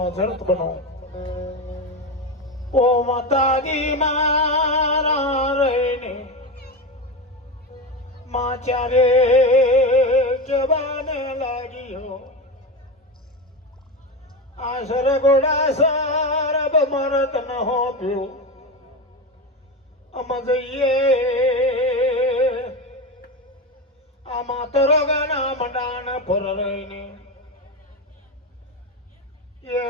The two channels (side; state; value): both; normal; correlation 0.19